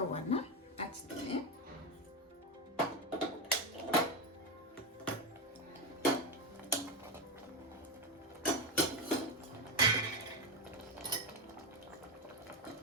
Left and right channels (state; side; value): normal; both; correlation 0.12